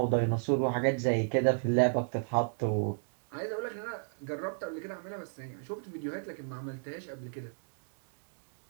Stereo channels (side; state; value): left; silent; digital silence